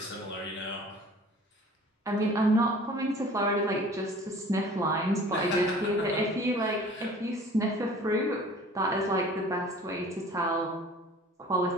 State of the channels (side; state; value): both; normal; correlation 0.47